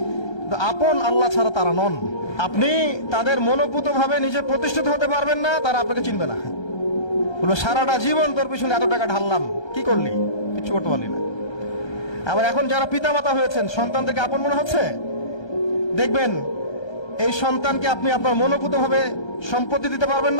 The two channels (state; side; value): late; right; 1.3 ms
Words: আপন আল্লাহ ছাড়া তারা নন। আপনি তাদের মনোপুত ভাবে নিজে প্রতিষ্ঠিত হতে পারবেন না, তারা আপনাকে চিনবে না। বলবো সারাটা জীবন তোর পিছনে এত টাকা ঢাললাম, কি করলি? কিছু করতে পারলি না। আবার এখন যারা পিতা মাতা হয়েছেন, সন্তানদেরকে আপন মনে হচ্ছে, দেখবেন এই সন্তানকে আপনি আপনার মনোপুত ভাবে সম্পত্তি দিতে পারবেন